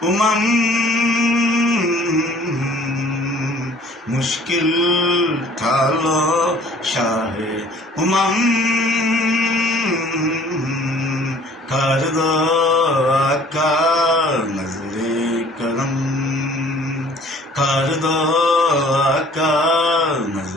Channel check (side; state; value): both; normal; correlation 0.54